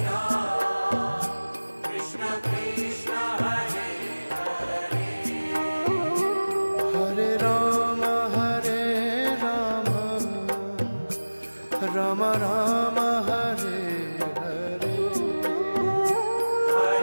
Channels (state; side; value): inverted; both; correlation -1.00